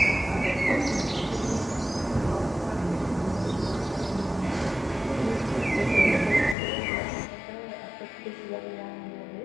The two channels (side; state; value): right; drops out; at 6.6 s